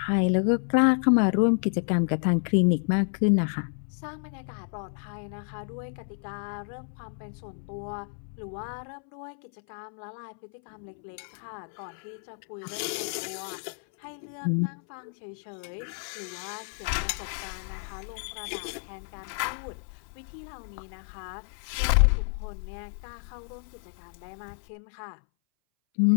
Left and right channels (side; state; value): right; silent; 58 dB below the other